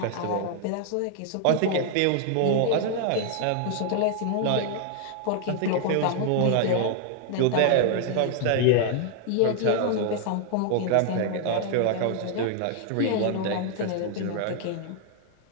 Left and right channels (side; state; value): both; different; correlation 0.00